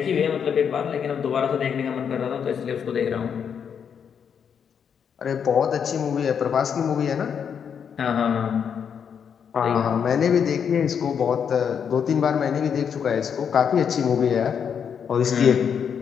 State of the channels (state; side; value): quieter; right; 7.4 dB